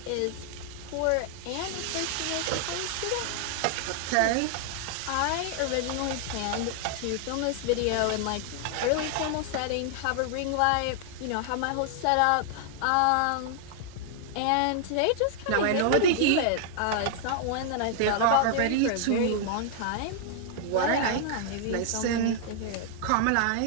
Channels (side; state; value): both; different; correlation -0.01